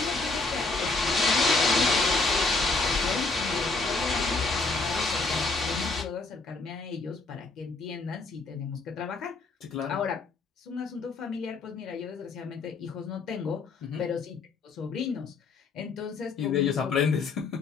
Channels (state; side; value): quieter; right; 3.9 dB